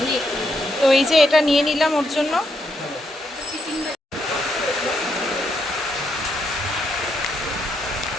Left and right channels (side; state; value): both; normal; correlation 0.78